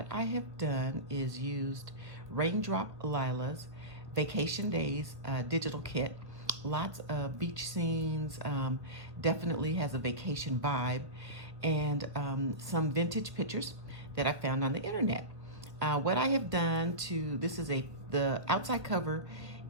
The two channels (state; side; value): late; left; 1.1 ms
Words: I have done is used Raindrop Lila's Vacation Days digital kit. Lots of beach scenes, definitely has a vacation vibe, and some vintage pictures that I found on the internet. What I have done this is the outside cover